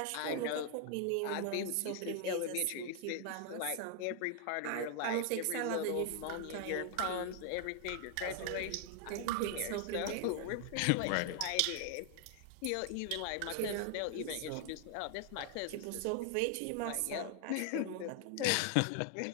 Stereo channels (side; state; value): both; different; correlation 0.00